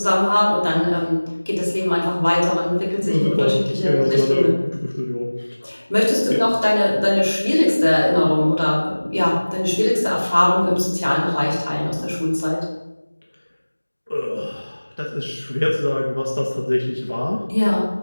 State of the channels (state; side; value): inverted; both; correlation -1.00